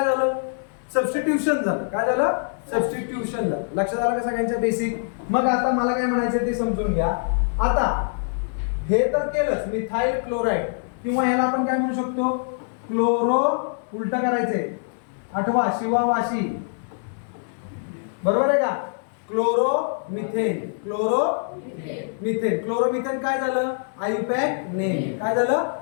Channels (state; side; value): silent; right; 63 dB below the other